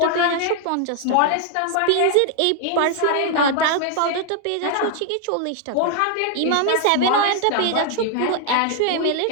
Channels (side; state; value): both; different; correlation 0.00